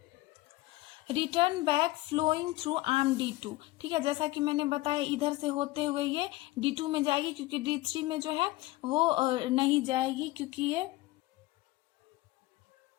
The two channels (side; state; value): right; quieter; 18.8 dB